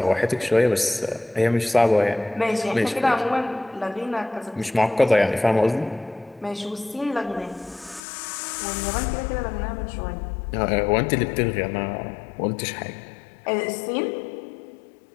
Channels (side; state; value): right; drops out; at 8.0 s